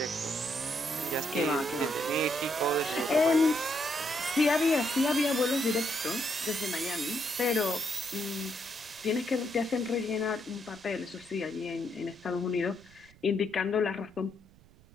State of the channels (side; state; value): right; noise; rumble, 26 dB below the sound